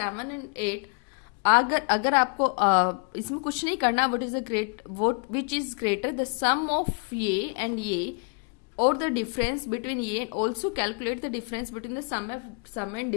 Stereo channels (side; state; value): right; quieter; 38.1 dB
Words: एंड 8 अगर आपको इसमें कुछ नहीं करना, which is greater the sum of ये एंड ये और द डिफरेंस बिटवीन ये and also calculate the difference between the sum and